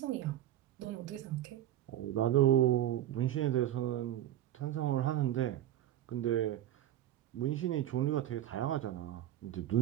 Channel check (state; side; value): quieter; left; 12.5 dB